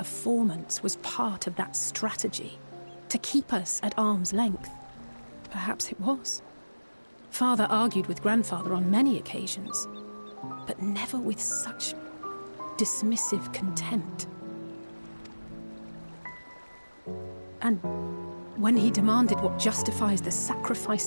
was part of that strategy, to keep us at arm's length. Perhaps it was. Father argued with Grandfather on many occasions, but never with such dismissive contempt. And when he demanded what justifies the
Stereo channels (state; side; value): inverted; both; correlation -1.00